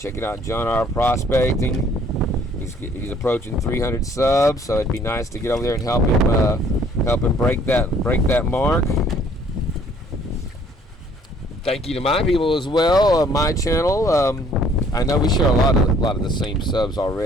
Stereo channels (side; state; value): both; normal; correlation 0.60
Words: John R. Prospecting. He's approaching 300 subs, so it'd be nice to get over there and help him break that mark. Thank you to my people as well, my channel. I know we share a lot of the same subs